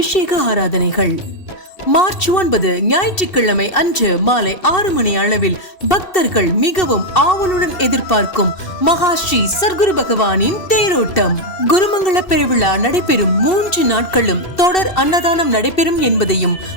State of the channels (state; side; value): late; right; 2.7 ms